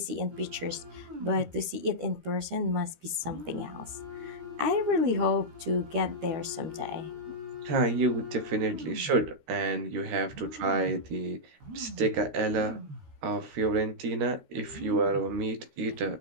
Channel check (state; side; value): late; left; 13 ms